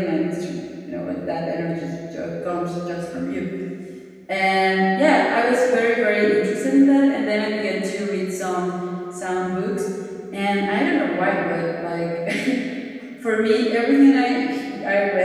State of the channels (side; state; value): both; identical; correlation 1.00